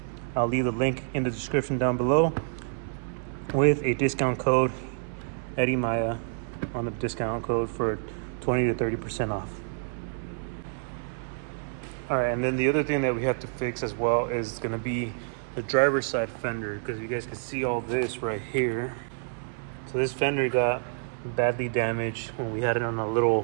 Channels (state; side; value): silent; left; 59 dB below the other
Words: I'll leave the link in the description down below with a discount code, Eddie Maya, on the discount code for 20 to 30% off. All right, and then the other thing that we have to fix as well is gonna be the driver's side fender, because you guys can see all this right here. So this fender got badly damaged when we had it on one